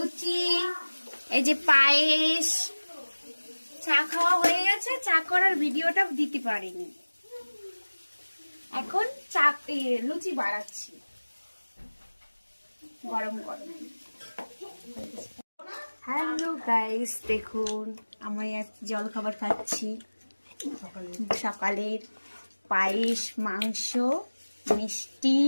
এই যে পায়েস, চা খাওয়া হয়ে গেছে। চা করার ভিডিওটা দিতে পারিনি, এখন লুচি বাড়াচ্ছি গরম গরম। হ্যালো গাইস, দেখুন আমি জল খাবার খাচ্ছি। সকালের পায়েস, মাংস, মিষ্টি,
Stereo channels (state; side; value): inverted; both; correlation -1.00